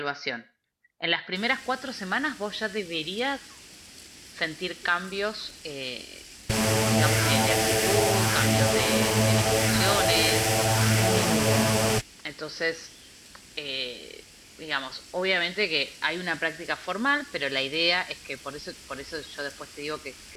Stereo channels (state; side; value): identical; both; correlation 1.00